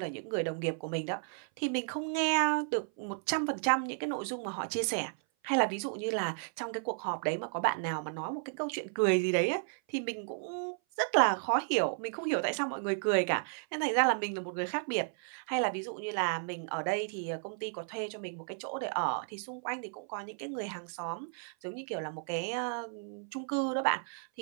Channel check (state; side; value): silent; left; 55 dB below the other